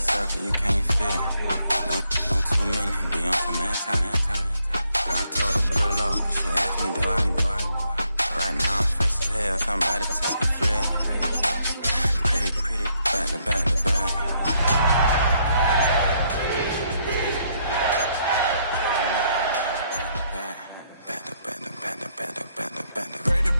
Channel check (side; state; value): both; inverted; correlation -0.73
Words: you can't fit. Don't too many be on some anti. I told her pull up. She asked me, do I? Right now I'm fresh as hell. Somebody take a flip. Pretty, back to back to back.